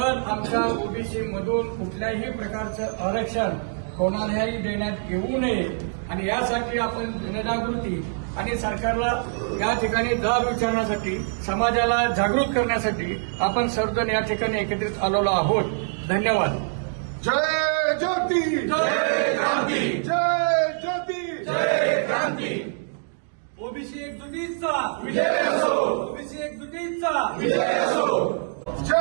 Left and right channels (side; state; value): left; silent; digital silence